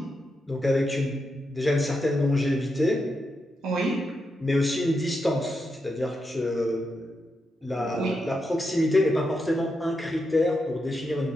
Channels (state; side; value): normal; both; correlation 0.85